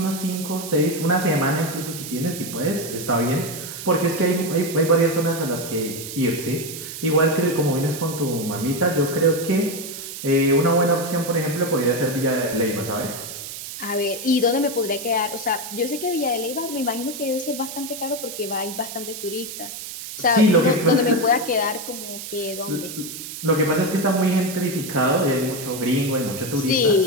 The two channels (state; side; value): noise; right; hiss, 9 dB below the sound